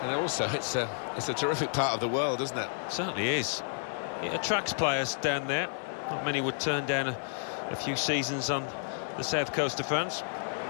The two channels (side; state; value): right; silent; digital silence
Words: and also it's a terrific part of the world, isn't it? Certainly is. It attracts players down there. Not many would turn down a few seasons on the south coast of France.